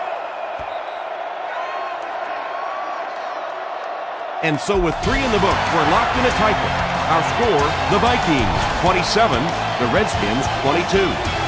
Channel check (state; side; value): identical; both; correlation 1.00